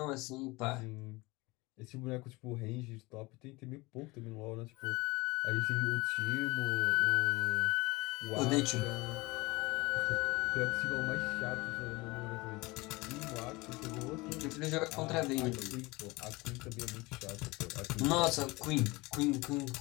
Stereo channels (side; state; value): right; quieter; 23.1 dB